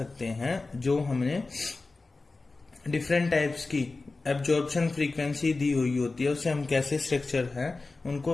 हैं। जो हमने डिफरेंट टाइप्स की एब्जॉर्प्शन फ्रीक्वेंसी दी हुई होती है उससे हम कैसे स्ट्रक्चर हैं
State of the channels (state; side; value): quieter; right; 3.6 dB